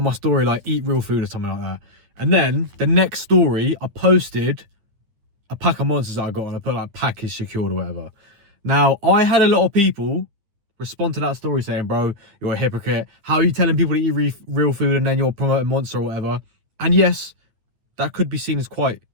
my story like eat real food or something like that. And then the next story, I posted a pack of monsters that I got and I put like package secured or whatever. Now, I had a lot of people respond to that story saying, bro, you're a hypocrite. How are you telling people to eat real food and then you're promoting Monster or whatever? And yes, that could be seen as quite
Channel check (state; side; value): late; left; 9.8 ms